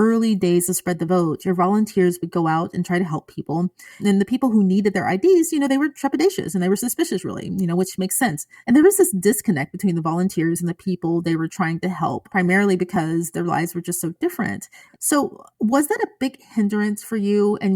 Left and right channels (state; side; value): identical; both; correlation 1.00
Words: days of Spread the Vote, your volunteers would go out and try to help people. And the people who needed their IDs, they were trepidatious and they were suspicious, really, which makes sense. And there was this disconnect between the volunteers and the people they were trying to help, primarily because their lives were just so different. So, was that a big hindrance for you and